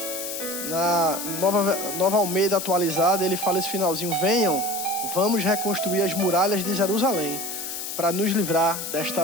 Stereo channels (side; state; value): left; noise; hiss, 6 dB below the sound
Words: Na Nova Almeida atualizada, ele fala esse finalzinho: venham, vamos reconstruir as muralhas de Jerusalém para nos livrar